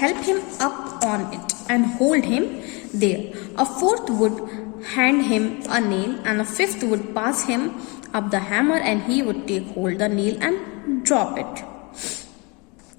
him up on it and hold him there. A fourth would hand him a nail, and a fifth would pass him up the hammer, and he would take hold the nail and drop it.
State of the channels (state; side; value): quieter; right; 29.1 dB